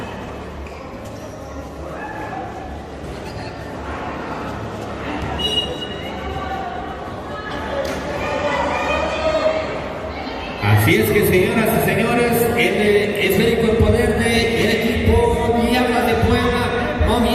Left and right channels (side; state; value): both; identical; correlation 1.00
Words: Así es que, señoras y señores, el esférico en poder del equipo Diablas de Puebla,